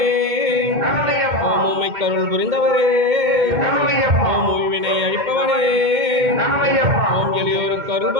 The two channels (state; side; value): late; left; 2.1 ms